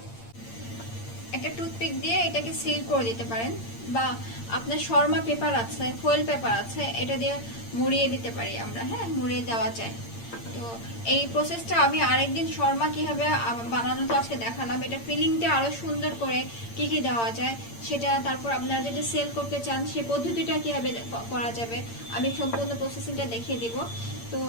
একটা টুথপিক দিয়ে এটাকে সিল করে দিতে পারেন, বা আপনার শর্মা পেপার আছে, ফয়েল পেপার আছে, এটা দিয়ে মুড়িয়ে দিতে পারি আমরা। হ্যাঁ, মুড়িয়ে দেওয়া যায়। তো এই প্রসেসটা আমি আরেকদিন শর্মা কিভাবে বানানো তো আজকে দেখালাম। এটা ফিলিংটা আরো সুন্দর করে কি কি দেওয়া যায় সেটা, তারপর আপনারা যদি সেল করতে চান সেই পদ্ধতিটা কিভাবে করা যাবে আমি সম্পূর্ণ প্রসেসিংটা দেখিয়ে দিব। তো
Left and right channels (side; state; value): right; late; 8.7 ms